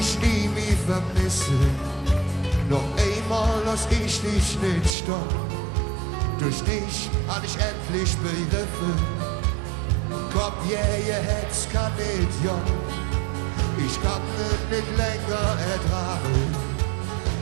nie mehr vermissen. Noch einmal lass ich dich nicht stoppen. Durch dich hab ich endlich begriffen. Komm, ihr Herz kann nicht jung. Ich kann es nicht länger ertragen.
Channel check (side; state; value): left; drops out; at 5.0 s